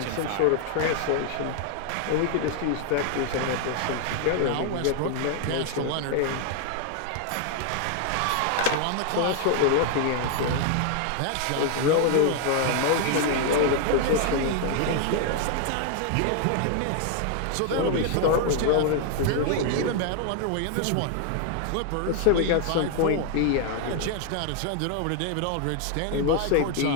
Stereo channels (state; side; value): different; both; correlation 0.00